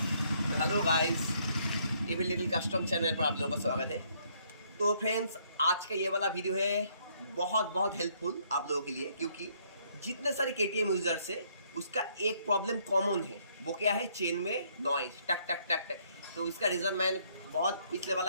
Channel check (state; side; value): inverted; both; correlation -0.68